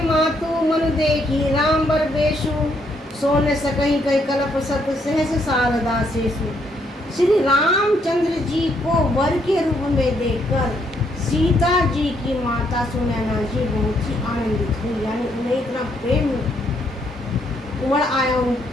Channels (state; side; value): normal; both; correlation 0.73